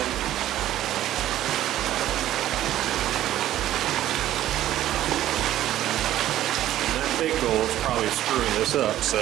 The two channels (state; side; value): quieter; left; 13.1 dB